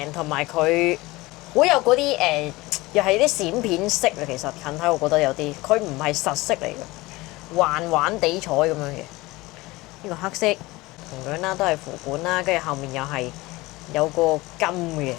同埋佢好有嗰啲又係啲閃片色啊。其實近睇我覺得有啲，佢唔係實色嚟嘅。環環地彩咁樣嘅，呢個黑色同樣啦，都係符管啦，跟住後面又係有個金嘅，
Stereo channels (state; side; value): quieter; right; 20.9 dB